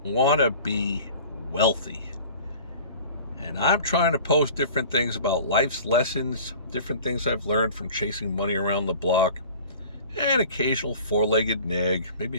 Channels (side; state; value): both; inverted; correlation -0.43